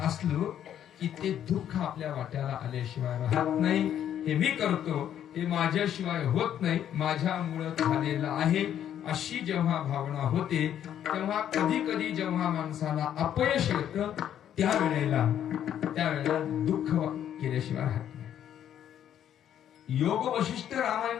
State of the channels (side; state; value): right; quieter; 10.2 dB